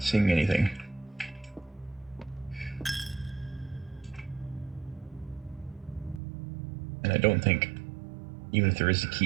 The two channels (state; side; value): drops out; left; at 6.2 s